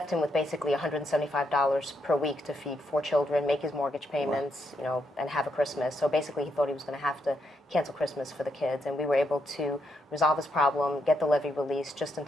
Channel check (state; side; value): normal; both; correlation 0.79